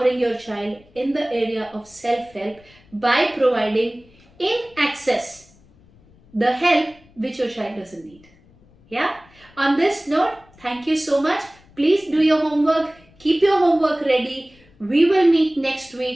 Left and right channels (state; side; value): noise; left; rumble, 28 dB below the sound